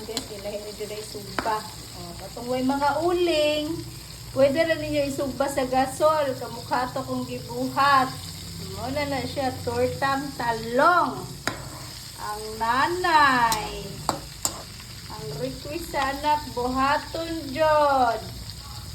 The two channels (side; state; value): both; identical; correlation 1.00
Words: guys. Kailangan nyo na isugba. Katong way mga uling. Pwede rin ninyo isugba sa gasol. Kamukha to kong gibuhat. Muna na siya. Tortang talong. Ang nanay. Ang request sa anak, buhaton jod.